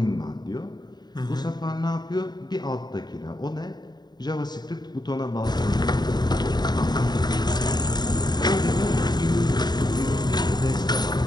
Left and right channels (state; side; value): late; right; 0.20 ms